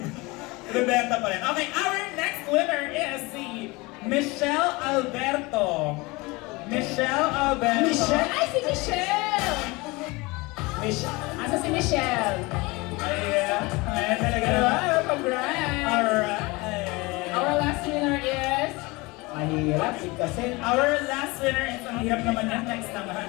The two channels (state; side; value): quieter; right; 24.1 dB